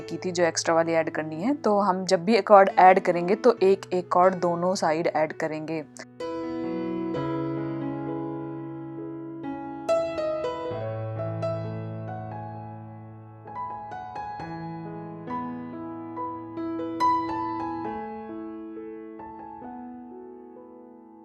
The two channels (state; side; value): identical; both; correlation 1.00